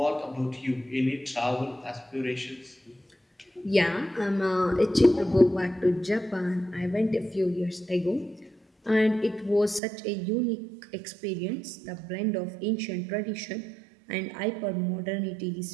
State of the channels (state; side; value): drops out; left; at 9.8 s